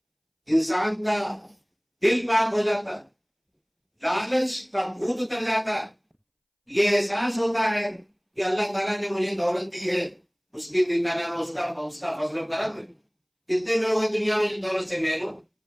انسان کا دل پاک ہو جاتا ہے، لالچ کا بھوت اتر جاتا ہے، یہ احساس ہوتا ہے کہ اللہ تعالیٰ نے مجھے دولت دی ہے، اس کی نام اس کا فضل و کرم ہے۔ کتنے لوگ ہیں دنیا میں جن دولت سے محروم؟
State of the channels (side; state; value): both; identical; correlation 1.00